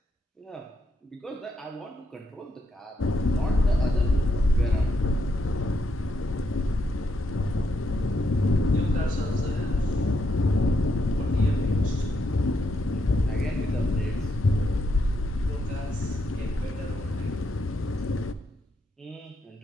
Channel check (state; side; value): normal; both; correlation 0.79